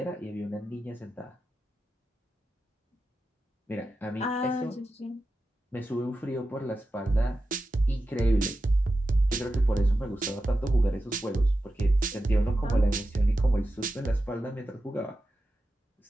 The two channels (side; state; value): both; normal; correlation 0.92